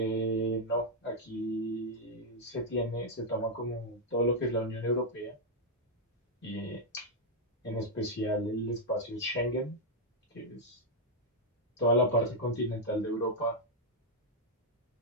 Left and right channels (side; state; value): both; normal; correlation -0.03